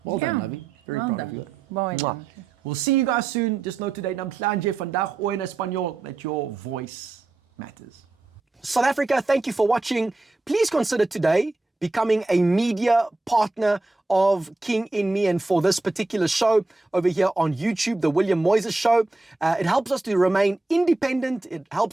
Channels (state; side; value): quieter; left; 3.2 dB